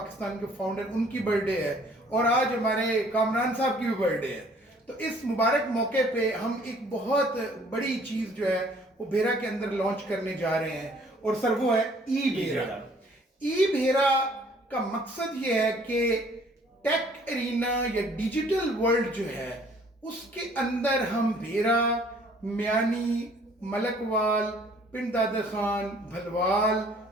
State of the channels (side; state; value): both; normal; correlation 0.58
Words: के फाउंडर, उनकी बर्थडे है और आज हमारे कामरान साहब की भी बर्थडे है। तो इस मुबारक मौके पे हम एक बहुत बड़ी चीज़ जो है वो भेरा के अंदर लॉन्च करने जा रहे हैं और सर वो है ई भेरा। ई भेरा का मकसद ये है कि टेक एरिना या डिजिटल वर्ल्ड जो है उसके अंदर हम भेरा, मियानी, मलकवाल, पिंड दादा खान, भलवाल,